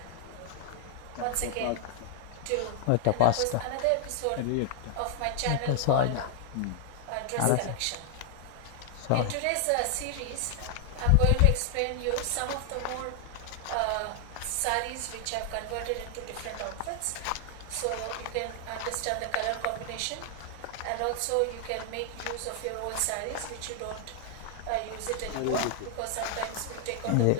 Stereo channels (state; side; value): different; both; correlation 0.00